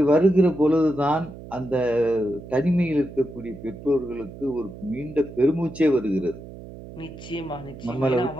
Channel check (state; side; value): noise; right; hum, 15 dB below the sound